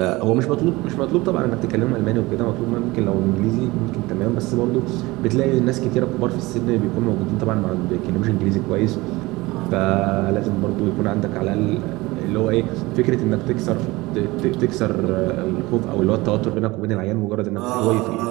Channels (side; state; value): left; quieter; 21.2 dB